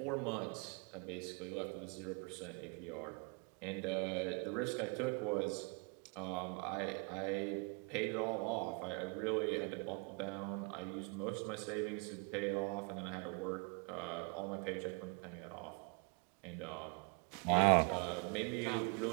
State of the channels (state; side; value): quieter; left; 35.4 dB